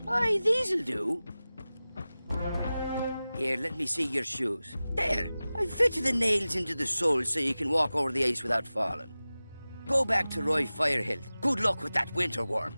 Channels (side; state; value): both; inverted; correlation -0.96